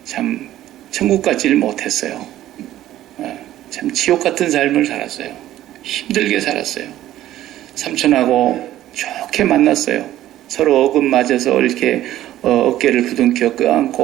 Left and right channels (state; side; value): quieter; left; 13.6 dB